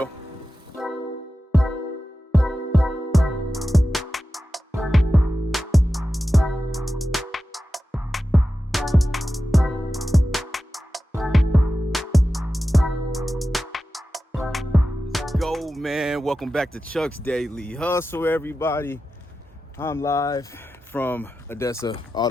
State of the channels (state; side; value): normal; both; correlation 0.93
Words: Go, man. Welcome back to Chuck's Daily Hustle, everybody. I'm live from Adesa